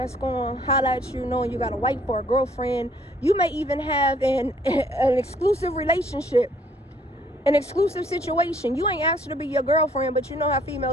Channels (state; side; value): normal; both; correlation 0.62